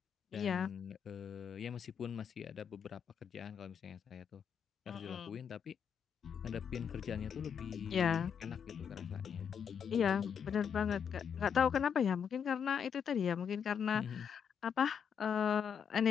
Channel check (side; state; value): right; quieter; 7.5 dB